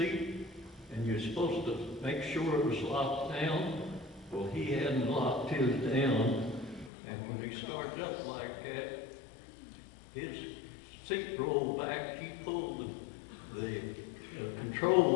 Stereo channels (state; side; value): drops out; right; at 6.9 s